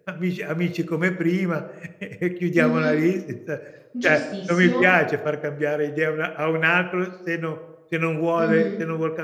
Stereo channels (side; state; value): both; identical; correlation 1.00